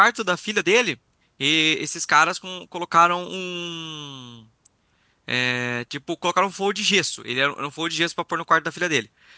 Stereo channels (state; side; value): identical; both; correlation 1.00